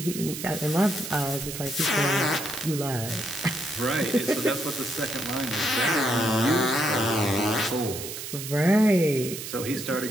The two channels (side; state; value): right; noise; hiss, 8 dB below the sound